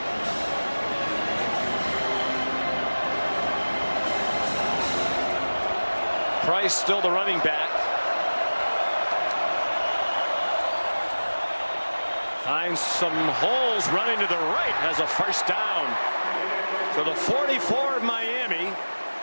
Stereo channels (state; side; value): inverted; both; correlation -1.00